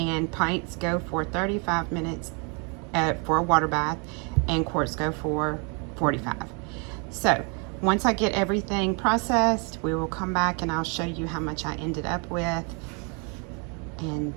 pints go for 35 minutes for a water bath, and quarts go for 45. So once I get everything processed, we will come back and I'll show you how much I ended up with, and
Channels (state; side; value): quieter; left; 35.0 dB